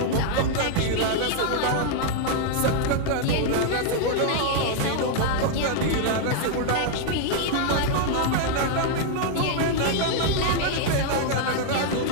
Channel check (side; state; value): both; different; correlation 0.00